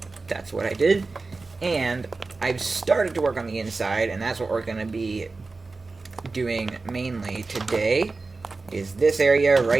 that's what I did. And I've started to work on the inside, and that's what we're going to be doing mainly today, is this area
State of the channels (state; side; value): quieter; left; 3.8 dB